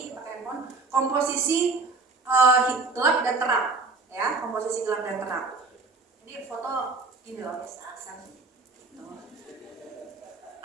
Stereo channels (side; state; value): left; quieter; 3.8 dB